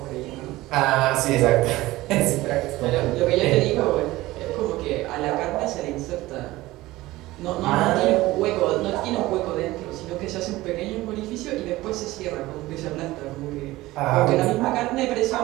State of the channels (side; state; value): left; quieter; 18.2 dB